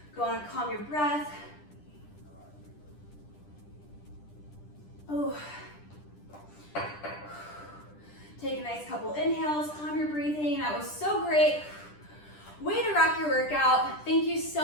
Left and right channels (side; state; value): right; late; 10 ms